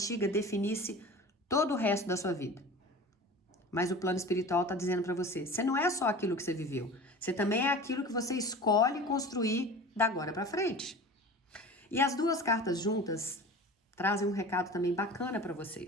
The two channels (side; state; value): both; normal; correlation 0.37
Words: definisse todo o resto da sua vida. Mas o plano espiritual está dizendo para você, você não é só aquilo que você viveu. Você também é aquilo que você escolhe construir da agora para frente. E as duas cartas juntas trazem um recado também bacana para